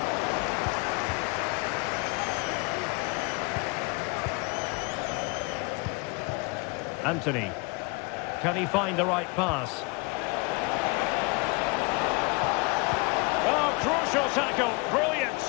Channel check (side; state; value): right; quieter; 29.1 dB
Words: Anthony. Can he find the right pass? Oh, crucial tackle. Brilliant.